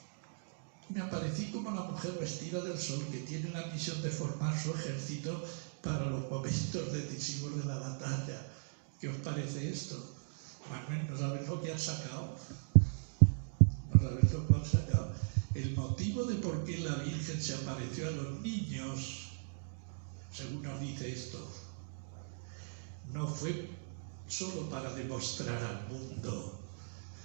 Me aparecí como la mujer vestida del sol que tiene la misión de formar su ejército para los momentos decisivos de la batalla. ¿Qué os parece esto? Manuel, ¿no sabes lo que han sacado? ¿No sabes lo que han sacado? El motivo de por qué la Virgen se apareció a los niños, según nos dice esto, no fue solo para demostrar al mundo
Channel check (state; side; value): silent; left; digital silence